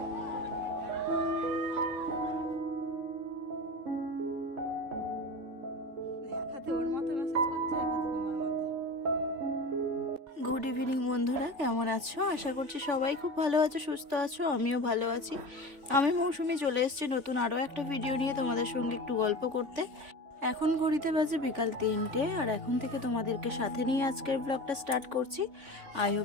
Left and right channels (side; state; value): left; late; 3.5 ms